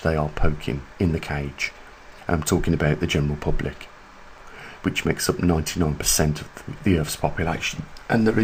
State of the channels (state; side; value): identical; both; correlation 1.00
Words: they are poking in the cage. I'm talking about the general public, which makes up 99% of the Earth's population, and there